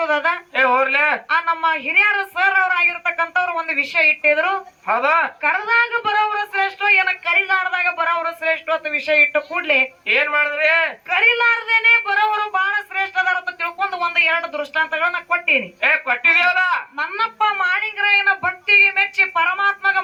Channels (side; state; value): both; identical; correlation 1.00